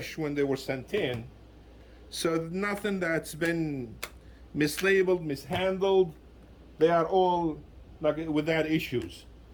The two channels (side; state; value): both; identical; correlation 1.00